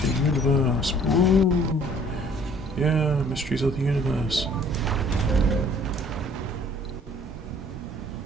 the universe. Woo! Yeah, mysteries of the universe.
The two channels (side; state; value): both; normal; correlation 0.56